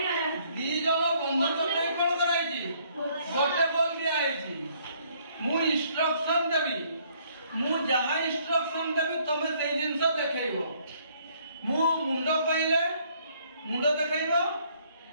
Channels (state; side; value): inverted; both; correlation -0.65